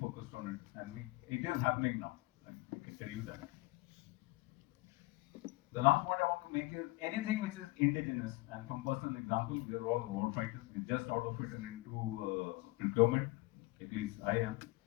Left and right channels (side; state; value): right; quieter; 21.8 dB